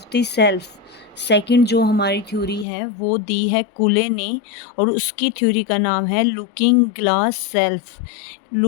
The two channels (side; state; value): right; drops out; at 2.7 s